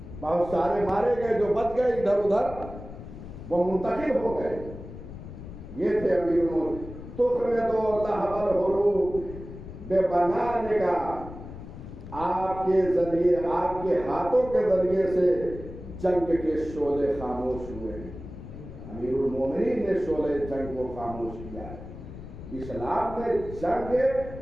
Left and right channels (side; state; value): left; noise; rumble, 12 dB below the sound